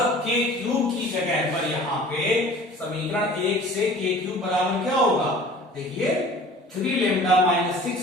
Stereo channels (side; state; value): both; normal; correlation 0.46